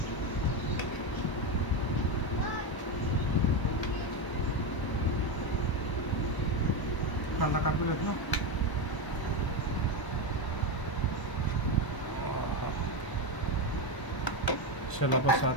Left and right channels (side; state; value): right; late; 1.0 ms